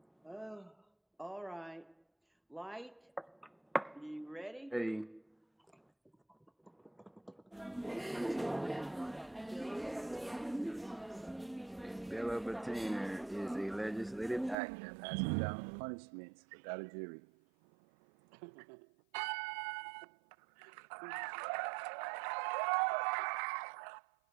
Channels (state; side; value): drops out; left; at 14.6 s